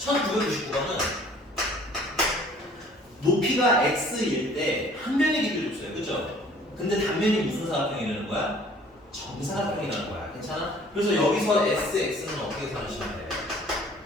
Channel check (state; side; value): normal; both; correlation 0.54